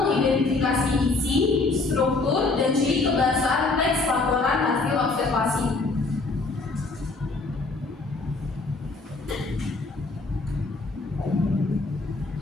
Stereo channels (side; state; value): right; quieter; 3.6 dB